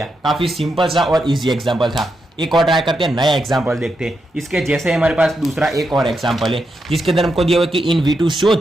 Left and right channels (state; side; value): normal; both; correlation 0.84